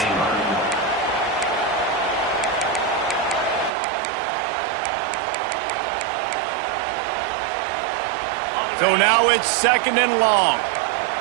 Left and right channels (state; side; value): drops out; left; at 3.7 s